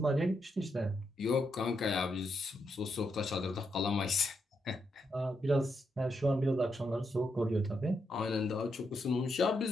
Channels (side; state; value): both; normal; correlation 0.81